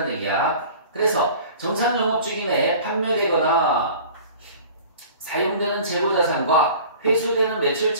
얘기야. 그래서 정상 영업주기 내에 판매되거나 사용되는 재고자산과 회수되는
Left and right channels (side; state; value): both; inverted; correlation -0.44